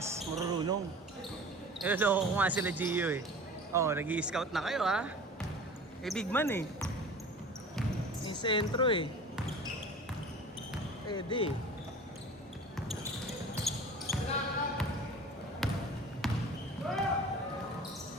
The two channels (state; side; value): normal; both; correlation 0.41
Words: marurunong. Loko ko nga sila Gio eh. Oh, nag-i-scout na kayo ha. Eh, big man eh. Yung sentro eh. Pwede eh.